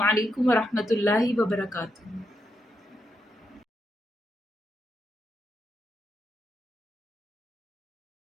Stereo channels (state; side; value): normal; both; correlation 0.83